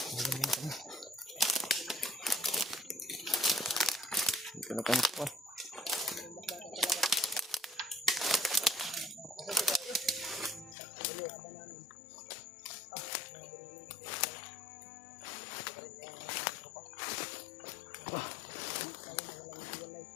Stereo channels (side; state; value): right; drops out; at 10.8 s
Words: Dito na kami pa.